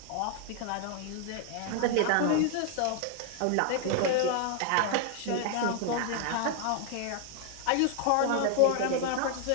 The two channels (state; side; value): different; both; correlation 0.00